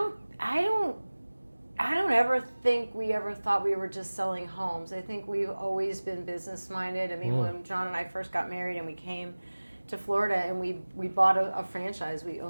ever think we ever thought we were just selling homes. I think we've always been business minded. I mean, when John and I first got married and we came to Florida and we bought a franchise, we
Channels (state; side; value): inverted; both; correlation -1.00